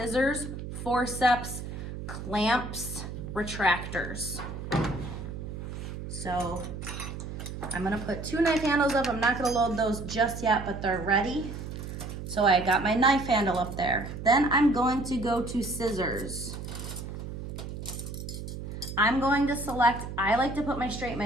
forceps, clamps, retractors. So I'm gonna put 2 knife handles up. I'm not gonna load those just yet, but they're ready. So I got my knife handle up there. Then I'm going to go to scissors. I'm going to select, I like to put my straight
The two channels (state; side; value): noise; right; hum, 8 dB below the sound